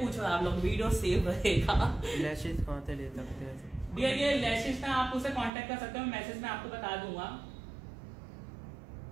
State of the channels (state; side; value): drops out; left; at 5.5 s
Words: आप लोग, वीडियो सेव रहेगा। लैशेस कहाँ से ले सकते हैं? डियर ये लैशेस ना आप उसे कांटेक्ट कर सकते हो, मैसेज में आपको बता दूंगा।